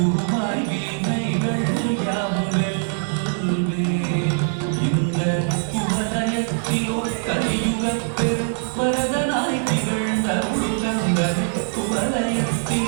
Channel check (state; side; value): silent; left; digital silence